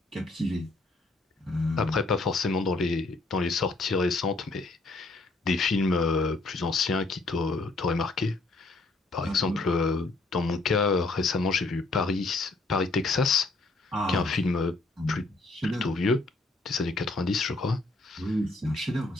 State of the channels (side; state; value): right; quieter; 3.3 dB